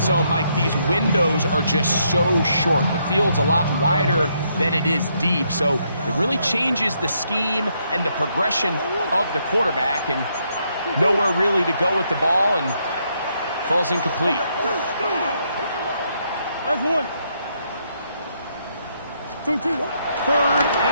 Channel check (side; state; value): both; inverted; correlation -0.75